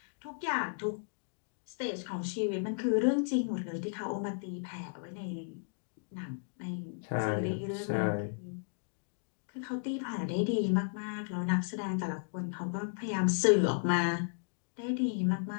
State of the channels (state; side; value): silent; right; digital silence